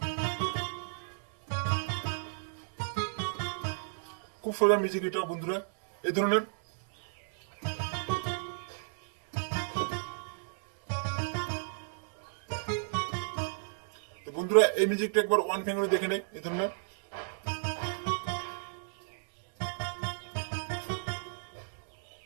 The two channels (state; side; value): silent; left; digital silence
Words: খুব সোজা মিউজিক এটা বন্ধুরা, এই ধরনের। তো বন্ধুরা এই মিউজিকটা একবার ওয়ান ফিঙ্গারে দেখে নেই, এই ধরনের।